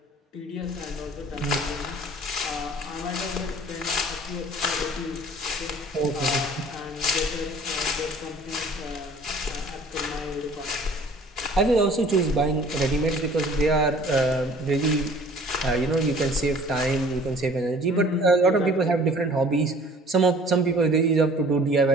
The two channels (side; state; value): both; normal; correlation 0.51